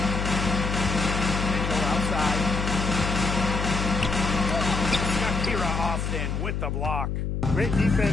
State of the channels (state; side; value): noise; left; hum, 2 dB below the sound